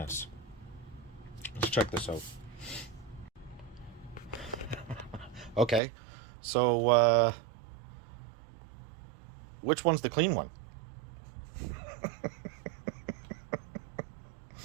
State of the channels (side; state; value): left; drops out; at 5.8 s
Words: Let's check this out. Okay, so which one's the clean one?